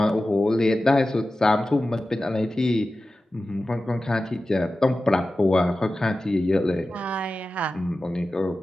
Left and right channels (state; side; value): normal; both; correlation 0.94